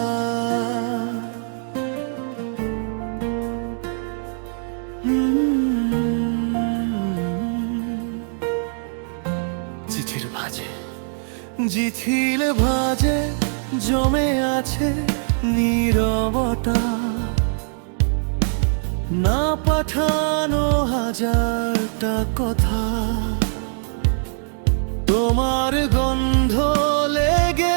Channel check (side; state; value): left; silent; 64 dB below the other